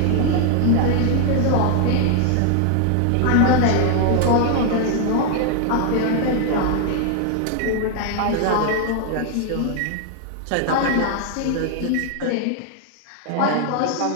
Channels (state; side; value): different; both; correlation 0.00